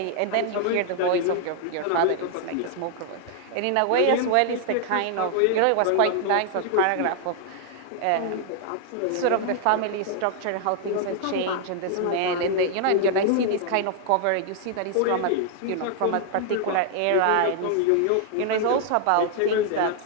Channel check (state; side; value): different; both; correlation 0.00